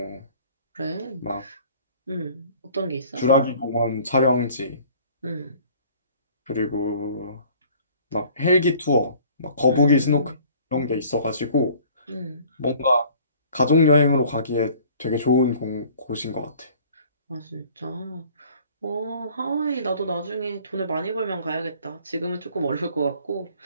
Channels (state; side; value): inverted; both; correlation -0.53